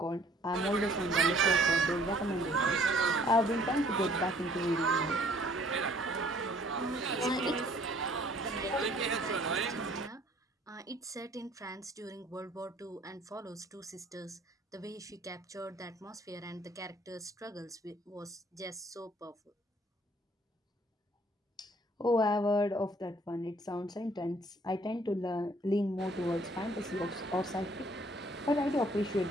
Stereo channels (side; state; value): both; normal; correlation 0.59